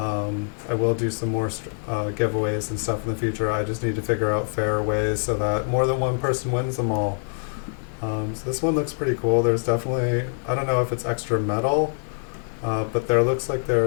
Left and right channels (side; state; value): right; silent; 62 dB below the other